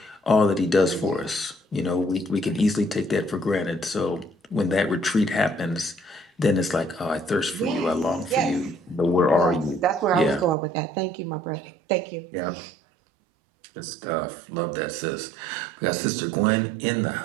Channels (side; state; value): left; drops out; at 10.6 s